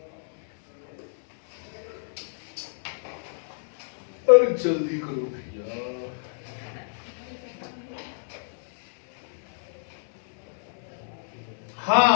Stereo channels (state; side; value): silent; right; 58 dB below the other